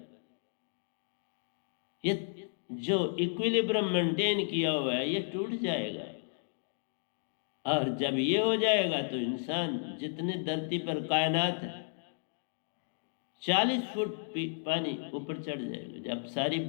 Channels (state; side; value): silent; right; digital silence